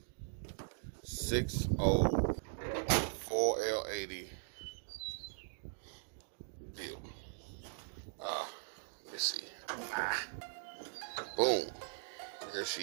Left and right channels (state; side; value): silent; left; digital silence